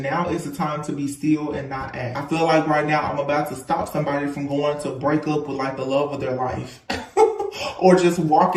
Now is the time to be still and not act. I feel like right now I'm about to stop somebody from going to break up with like the love of their life. Or just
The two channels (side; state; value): both; identical; correlation 1.00